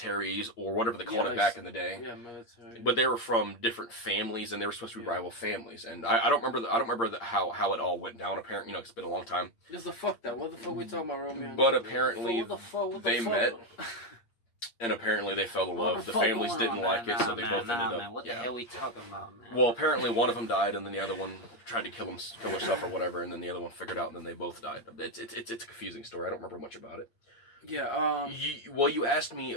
or whatever they called it back in the day. Yeah, military. But they were from different families and they were supposed to be rival families. And I don't remember how it all went down. Apparently, you know, it's been a long time. Just the fuck that. What the fuck we talking about, Romeo? But apparently they met. And apparently they fell in love. The families didn't like it, so they both ended up. Man. What the hell are we talking about, man? Well, apparently one of them died, and then the other one tried to kill herself or whatever, and then the other one figured out, and then they both died. It's a confusing story. I don't remember much about it. Yeah. You asked me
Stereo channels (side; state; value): right; late; 8.7 ms